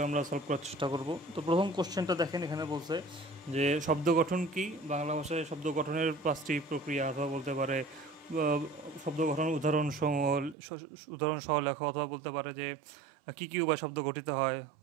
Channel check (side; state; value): left; drops out; at 10.6 s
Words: আমরা সলভ করার চেষ্টা করব। তো প্রথম কোশ্চেনটা দেখেন, এখানে বলছে যে শব্দ গঠন কি। বাংলা ভাষায় শব্দ গঠনের 5টি প্রক্রিয়া, অথবা বলতে পারে শব্দ গঠন উদাহরণ সহ লেখো, অথবা বলতে পারে যে কী কী উপায় শব্দ গঠিত হয়,